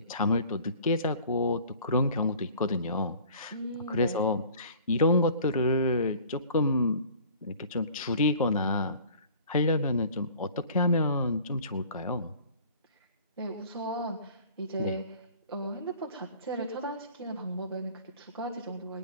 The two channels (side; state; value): both; inverted; correlation -0.48